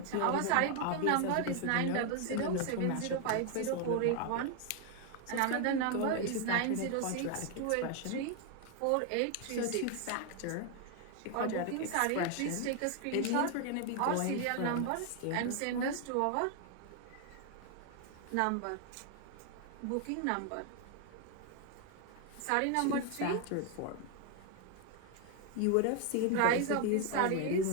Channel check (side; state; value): both; different; correlation 0.01